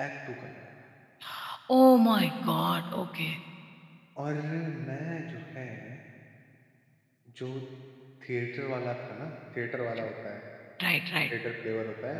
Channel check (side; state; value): both; identical; correlation 1.00